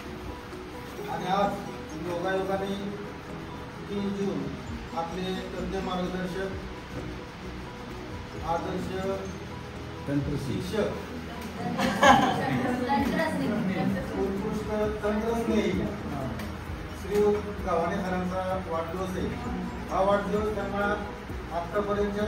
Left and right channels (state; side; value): identical; both; correlation 1.00